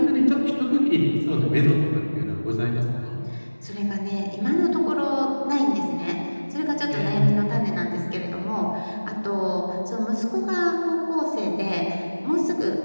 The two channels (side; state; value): both; inverted; correlation -1.00